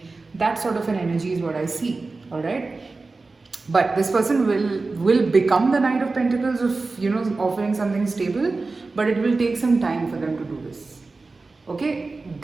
That sort of an energy is what I see. All right. But this person will become the Knight of Pentacles of, you know, offering something stable, but it will take some time for them to do this. Okay,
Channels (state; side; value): quieter; left; 3.7 dB